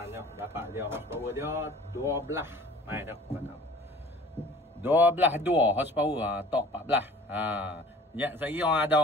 tengok, dapat dia horsepower dia 12. Mai dah patut. 12 horsepower, torque 14. Ya, saya orang ada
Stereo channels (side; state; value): both; normal; correlation 0.47